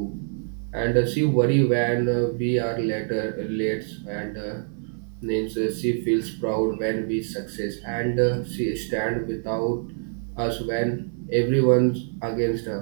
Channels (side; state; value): left; silent; 58 dB below the other